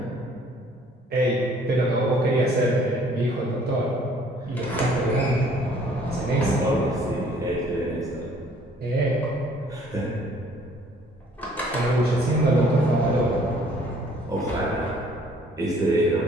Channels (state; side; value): normal; both; correlation 0.58